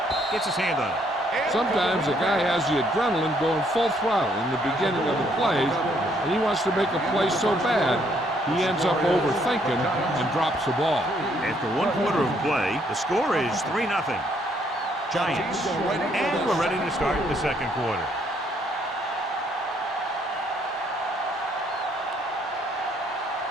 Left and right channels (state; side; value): normal; both; correlation 0.69